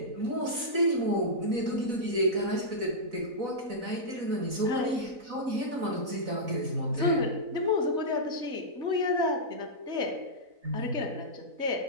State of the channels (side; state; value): left; late; 4.0 ms